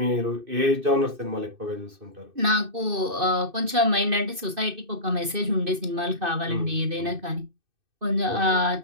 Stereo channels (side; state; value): left; late; 2.6 ms